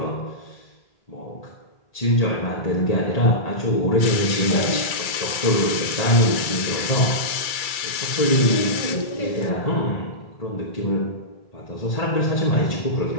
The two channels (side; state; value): right; late; 2.3 ms